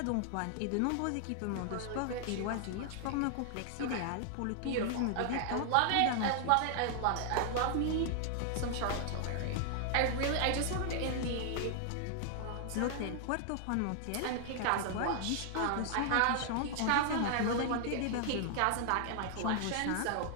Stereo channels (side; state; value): both; different; correlation 0.00